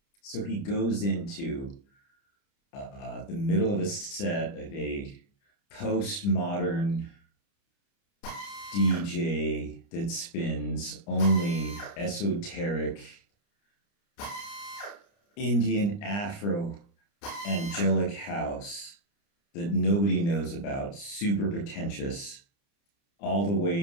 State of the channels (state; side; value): late; right; 30 ms